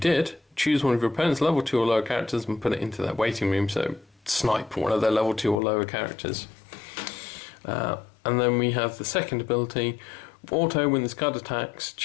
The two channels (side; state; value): right; drops out; at 5.6 s